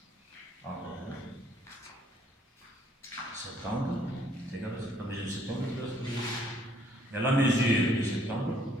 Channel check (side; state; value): both; normal; correlation 0.65